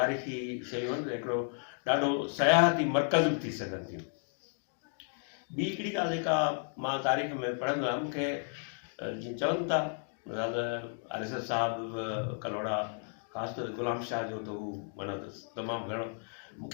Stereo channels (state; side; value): silent; right; 56 dB below the other